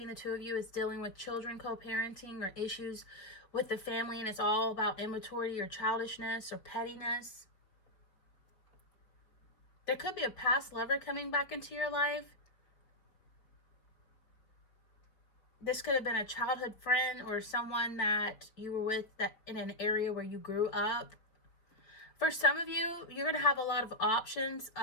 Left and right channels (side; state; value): right; late; 4.6 ms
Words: the two of you, it's dealing with children, co-parenting, or issues with the family, and it's all about immaturity or childishness or pettiness. There could be a past lover coming back into your life. This could have been a childhood friend or someone that you were with that in an area where you grew up. For some of you, you're going to have a lot of options.